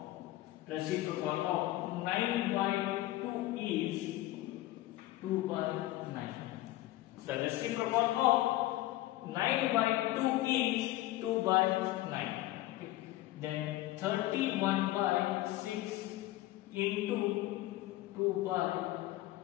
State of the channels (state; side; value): quieter; right; 16.5 dB